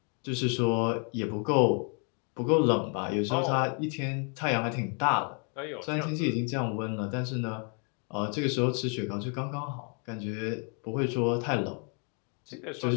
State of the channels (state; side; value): quieter; right; 38.7 dB